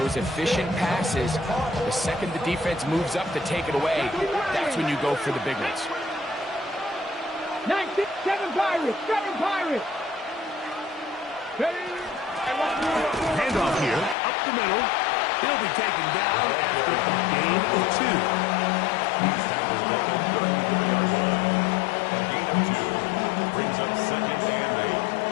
efficient passes, the second the defense moves up to take it away, that's when you go for the big ones. 19, 7 Pirates, 7 Pirates. Handoff here, up the middle. He'll be taken down after a gain of 2. He's tackled at the 34-yard line. A gain of 2 brings up 2nd and 8.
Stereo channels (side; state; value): right; drops out; at 14.2 s